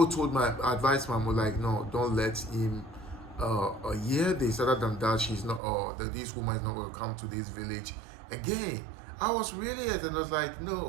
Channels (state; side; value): drops out; left; at 5.6 s